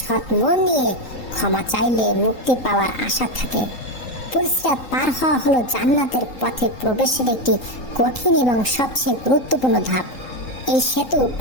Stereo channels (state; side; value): late; right; 3.8 ms